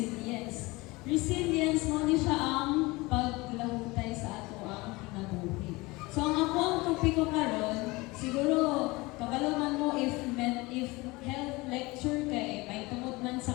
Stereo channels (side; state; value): right; quieter; 23.0 dB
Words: Resilience mo ni siya ang paglahutay sa ato ang kinabuhi. So, ang ako ang topiko karon, siguro kabalo man mo if health lecture kay may tungod man sa